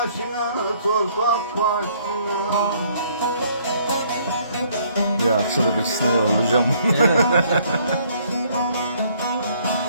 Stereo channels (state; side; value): inverted; both; correlation -0.63